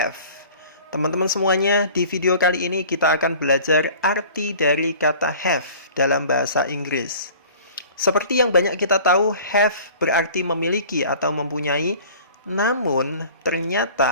Teman-teman semuanya, di video kali ini kita akan belajar arti dari kata have dalam bahasa Inggris. Seperti yang banyak kita tahu, have berarti memiliki atau mempunyai, namun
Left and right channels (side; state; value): both; inverted; correlation -0.46